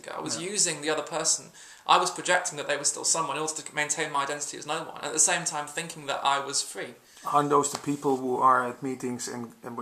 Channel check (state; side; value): identical; both; correlation 1.00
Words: I was using the other person. I was projecting that they were still someone in order to maintain my identity as no one. And at the same time, thinking that I was free. Aren't those the people who are at meetings and